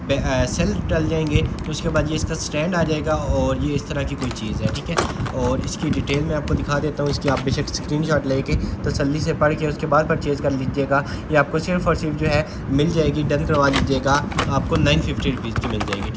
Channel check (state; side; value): identical; both; correlation 1.00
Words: सेल डल जाएंगे, तो उसके बाद ये इसका स्टैंड आ जाएगा और ये इस तरह की कोई चीज़ है, ठीक है। और इसकी डिटेल मैं आपको दिखा देता हूँ। इसकी आप बेशक स्क्रीनशॉट लेके तसल्ली से पढ़ के उसके बाद परचेज़ कर लीजिएगा। ये आपको सिर्फ़ और सिर्फ जो है मिल जाएगी, डन करवा लीजिएगा, आपको 950 रुपीज़ की मिल जाएगी,